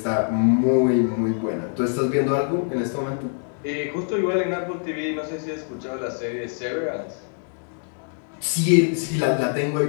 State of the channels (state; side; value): silent; right; 57 dB below the other